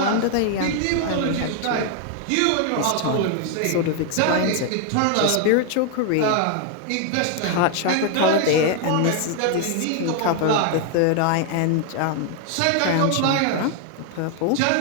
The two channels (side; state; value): both; different; correlation 0.00